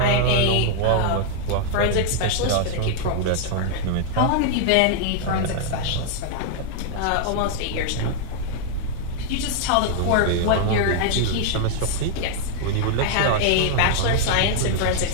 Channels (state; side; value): different; both; correlation 0.00